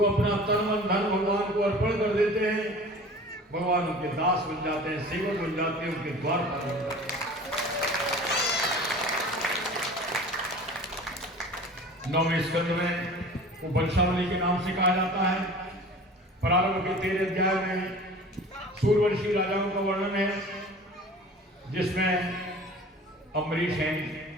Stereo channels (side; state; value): both; normal; correlation 0.41